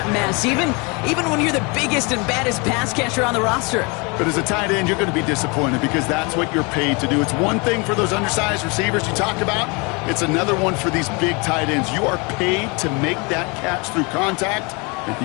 mess, even when you're the biggest and baddest pass catcher on the roster. But as a tight end, you're going to be disappointed because that's what you're paid to do. It's one thing for those undersized receivers you talked about. It's another one for these big tight ends. You are paid to make that catch through contact, and he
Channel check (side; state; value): right; quieter; 29.7 dB